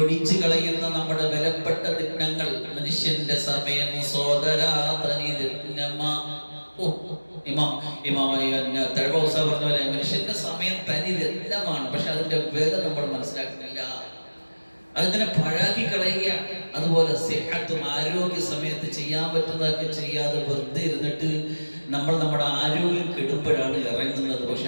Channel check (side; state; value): both; inverted; correlation -1.00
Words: കളയുന്ന നമ്മുടെ വിലപ്പെട്ട ദിനങ്ങൾ. മനുഷ്യന്റെ സമയം തഴവസ പറഞ്ഞ പോലെ മനുഷ്യന്റെ സമയം തനി രത്നമാണ്. പക്ഷെ അതിന്റെ വില നമ്മൾ മനസ്സിലാക്കുന്നില്ല, അതിങ്ങനെ പഴാക്കി കളയുക. അതുപോലെ സിഹത്തും, ആരോഗ്യ സമയത്ത് ചെയ്യാൻ പറ്റുന്നതൊക്കെ ചെയ്യാതെ വെറുതെ ഇരുന്നിട്ട് നമ്മൾ നമ്മുടെ ആരോഗ്യം കെടുമ്പോഴാണ് ഇറങ്ങുന്നത്.